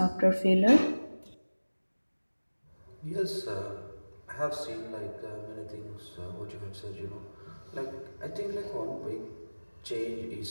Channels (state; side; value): inverted; both; correlation -1.00